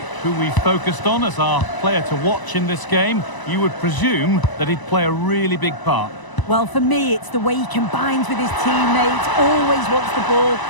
who we focused on as our player to watch in this game. You would presume that he'd play a really big part. Well, for me, it's the way he combines with his teammates, always wants the ball.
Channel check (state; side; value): late; right; 1.0 ms